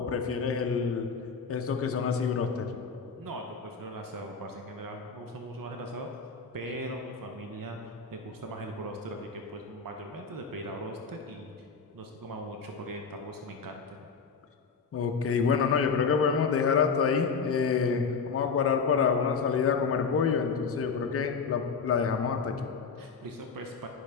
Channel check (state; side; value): quieter; right; 5.3 dB